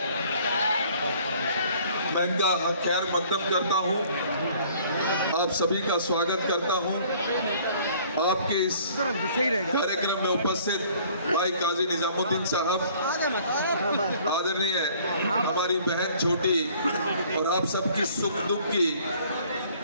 मैं इनका खैर मकदम करता हूं, आप सभी का स्वागत करता हूं। आपके इस कार्यक्रम में उपस्थित भाई काजी निजामुद्दीन साहब, आदरणीय हमारी बहन छोटी और आप सबकी सुख दुख की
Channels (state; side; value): inverted; both; correlation -0.56